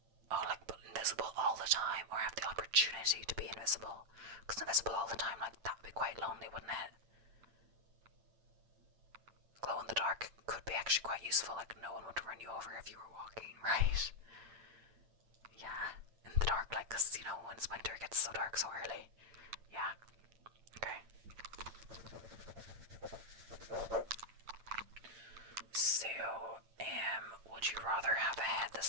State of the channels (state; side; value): late; left; 8.9 ms